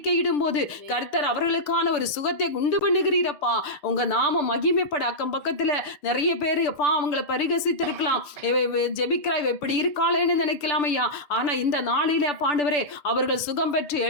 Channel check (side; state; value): right; late; 6.8 ms